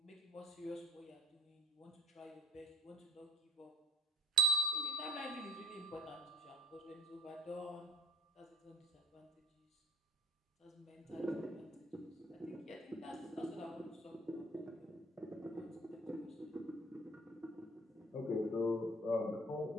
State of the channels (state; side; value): normal; both; correlation 0.49